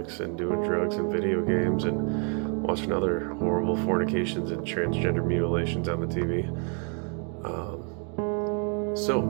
and doing drugs and video games and watching other horrible fornications and transgender mutilations on the TV. So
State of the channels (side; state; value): left; quieter; 39.6 dB